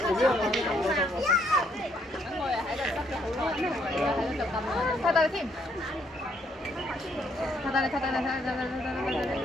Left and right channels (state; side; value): normal; both; correlation 0.70